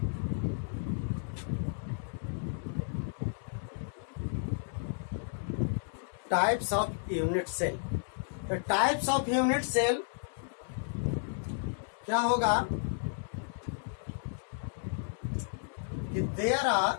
unit cell. तो टाइप्स ऑफ यूनिट सेल क्या होगा कि देयर आर,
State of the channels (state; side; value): silent; right; digital silence